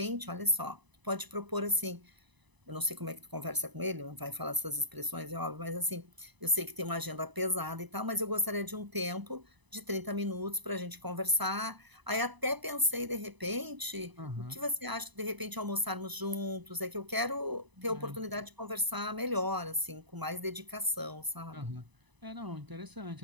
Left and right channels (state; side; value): late; left; 1.0 ms